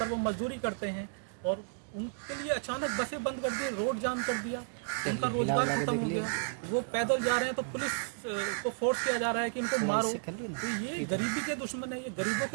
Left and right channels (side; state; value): left; silent; digital silence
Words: वो मजदूरी करते हैं, और उनके लिए अचानक बसें बंद कर दी, रोड जाम कर दिया, उनका रोजगार खत्म हो गया। वो पैदल जा रहे हैं तो पुलिस को फोर्स किया जा रहा है कि इनको मारो। तो ये गरीबी के दुश्मन है, ये गरीबों